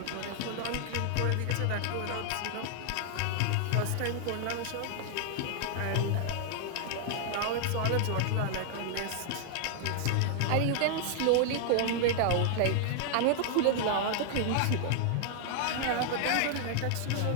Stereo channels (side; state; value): both; different; correlation -0.01